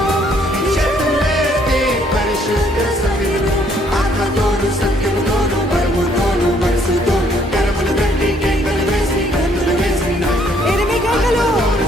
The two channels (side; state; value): both; normal; correlation 0.66